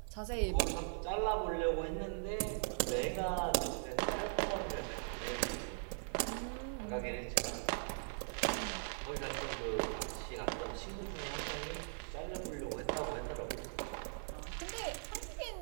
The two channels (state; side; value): silent; left; 51 dB below the other